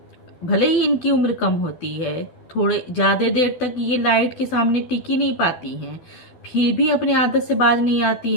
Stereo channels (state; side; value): late; right; 12 ms